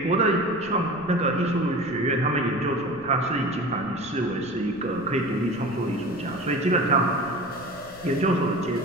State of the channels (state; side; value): noise; left; rumble, 21 dB below the sound